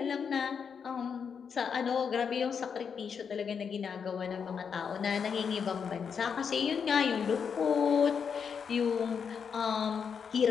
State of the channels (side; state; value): right; quieter; 6.6 dB